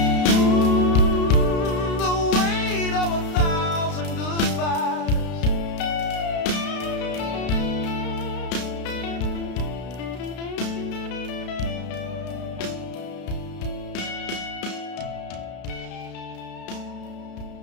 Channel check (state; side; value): late; right; 33 ms